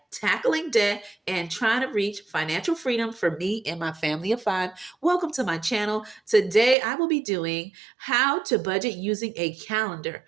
tackling debt and trying to reach financial freedom for me and my family of five. Welcome to my channel. Today, I will be doing how to budget using a calendar,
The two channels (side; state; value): left; drops out; at 6.8 s